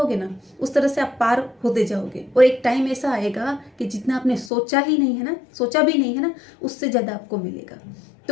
ना उस तरह से आप पार होते जाओगे, और एक टाइम ऐसा आएगा कि जितना आपने सोचा भी नहीं है ना उससे ज़्यादा आपको मिलेगा।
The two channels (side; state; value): right; drops out; at 4.5 s